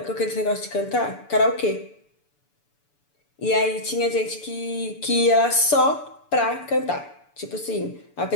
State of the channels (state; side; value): late; right; 6.9 ms